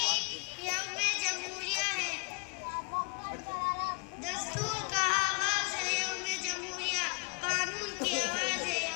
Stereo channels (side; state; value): right; quieter; 32.2 dB